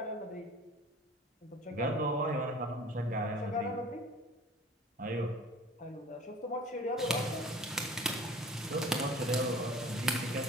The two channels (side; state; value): both; normal; correlation 0.44